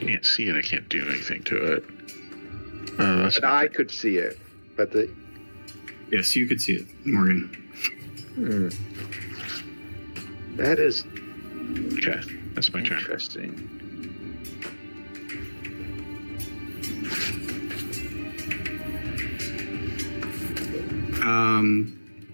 Can't see it. I can't do anything to it. That's And I could see it, but the Yes, you could see it, Morgan. that is okay. That's my turn. interesting.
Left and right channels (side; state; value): both; inverted; correlation -1.00